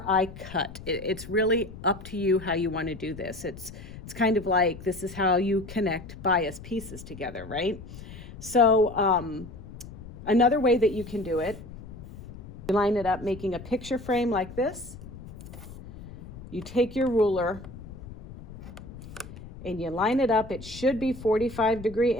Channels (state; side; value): noise; left; rumble, 15 dB below the sound